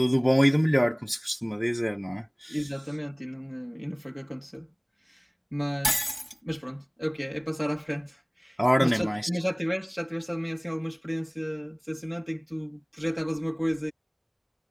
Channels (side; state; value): both; identical; correlation 1.00